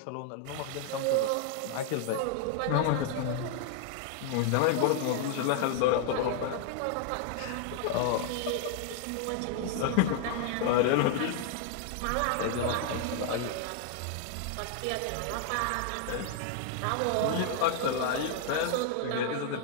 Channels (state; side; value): different; both; correlation 0.00